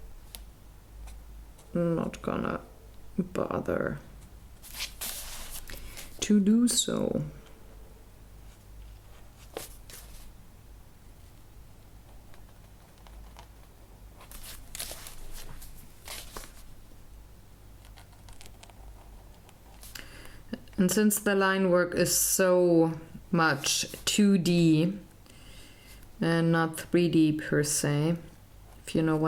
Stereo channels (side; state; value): both; identical; correlation 1.00